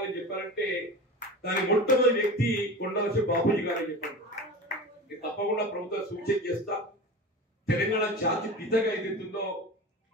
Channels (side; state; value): both; normal; correlation 0.31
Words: చెప్పారంటే దాని మొట్టమొదటి వ్యక్తి కొండలసి బాపూజీ గారని చెప్పారు. తప్పకుండా ప్రభుత్వం సూచన చేస్తా తెలంగాణ జాతి పితగా ఏదైతుందో